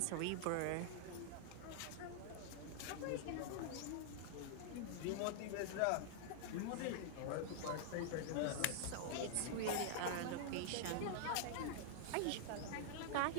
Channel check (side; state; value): both; different; correlation -0.01